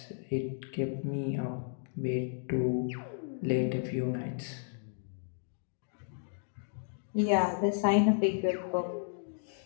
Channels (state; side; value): silent; right; digital silence